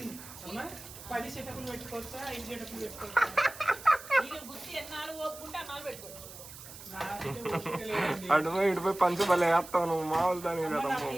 10 సెటప్లు పెట్టుకోవచ్చా? 5 సెటప్లు పెట్టుకోవచ్చా? ఇటుపోయి పంచబలే వేస్తావు నువ్వు, మామూలు దాని కదా.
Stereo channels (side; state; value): right; noise; hiss, 15 dB below the sound